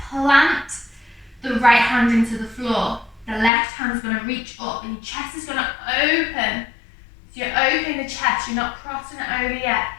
plant the right hand into the floor. The left hand is gonna reach up and your chest is gonna open. So you're opening the chest, you're not crossing it over yet.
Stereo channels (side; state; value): right; drops out; at 3.5 s